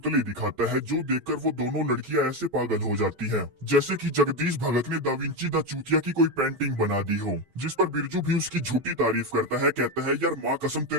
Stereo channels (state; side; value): late; left; 11 ms